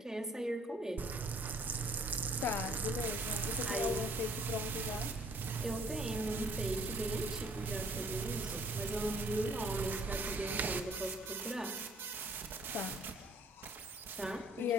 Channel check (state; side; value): normal; both; correlation 0.59